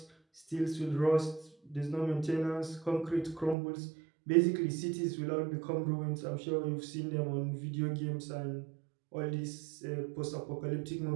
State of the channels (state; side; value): drops out; left; at 3.6 s